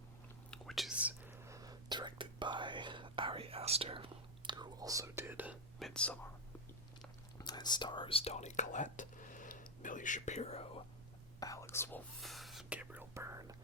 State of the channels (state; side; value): normal; both; correlation 0.06